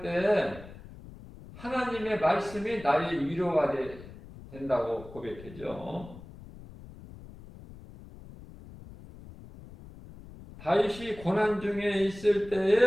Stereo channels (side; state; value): left; noise; rumble, 17 dB below the sound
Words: 때 하나님의 말씀이 나의 위로가 된다고 고백했죠. 다윗이 고난 중에 있을